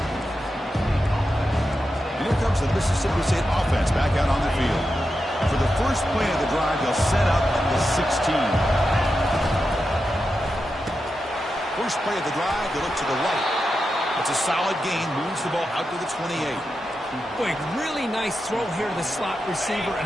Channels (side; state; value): both; normal; correlation 0.89